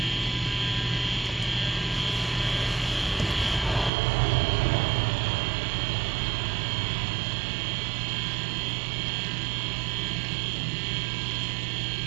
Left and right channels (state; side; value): drops out; left; at 3.9 s